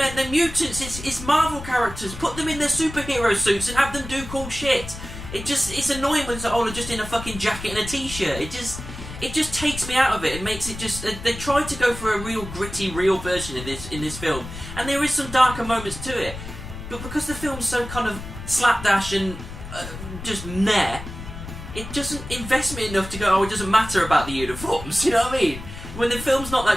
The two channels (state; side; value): noise; left; rumble, 11 dB below the sound